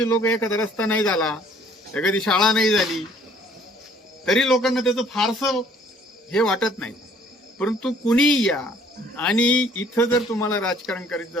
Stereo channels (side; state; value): both; normal; correlation 0.58